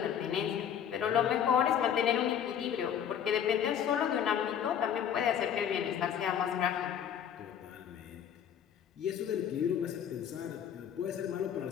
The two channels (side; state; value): right; quieter; 8.9 dB